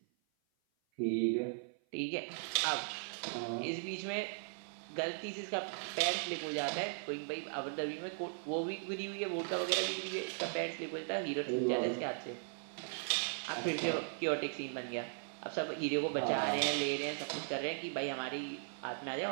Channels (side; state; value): left; silent; 52 dB below the other